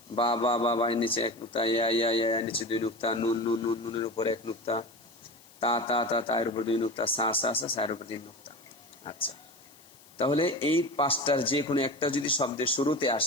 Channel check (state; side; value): noise; left; hiss, 25 dB below the sound